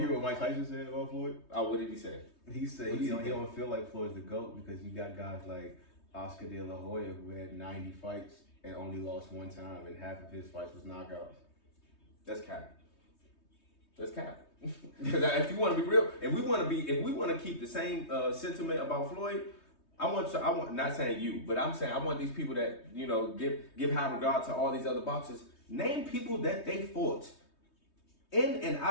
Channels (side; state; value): right; late; 3.2 ms